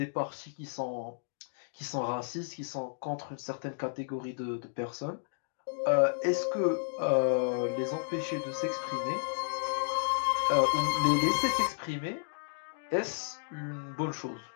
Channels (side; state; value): right; silent; digital silence